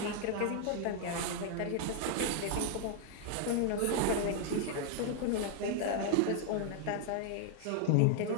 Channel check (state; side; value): different; both; correlation 0.00